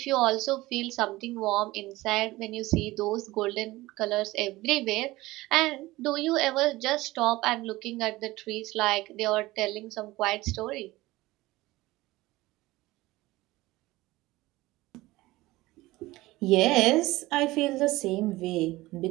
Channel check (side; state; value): left; quieter; 19.0 dB